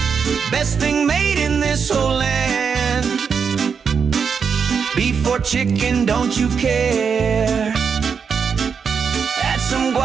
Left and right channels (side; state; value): left; quieter; 6.2 dB